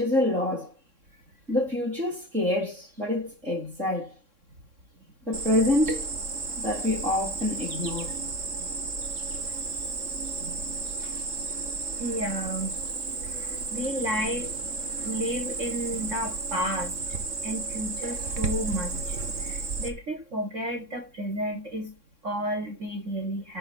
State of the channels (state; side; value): late; left; 3.6 ms